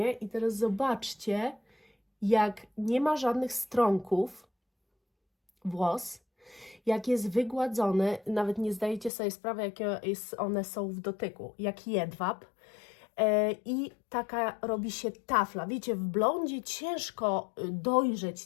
i teraz zobaczcie, jak nie ma żadnych strąków włos, jak jest wygładzony, nawet nie zdajecie sobie sprawy, jakie one są w dotyku, jak jedwab. I taka robi się tafla. Wiecie, w blondzie ciężko dojrzeć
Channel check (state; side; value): drops out; right; at 9.1 s